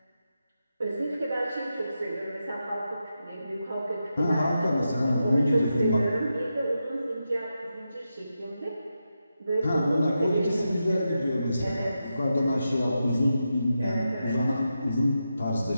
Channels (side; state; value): both; inverted; correlation -0.88